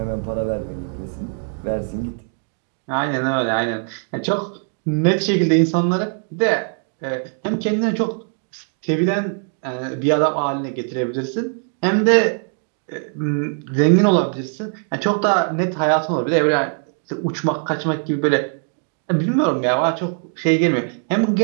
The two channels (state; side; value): silent; left; 56 dB below the other